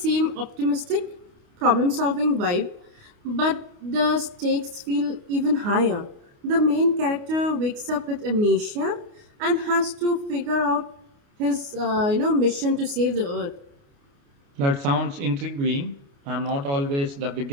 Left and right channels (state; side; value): late; left; 29 ms